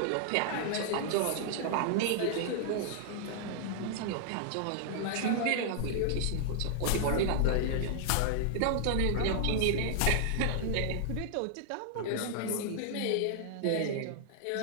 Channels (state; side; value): different; both; correlation -0.01